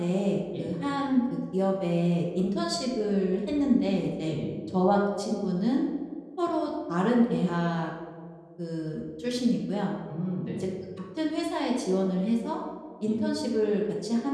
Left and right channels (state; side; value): identical; both; correlation 1.00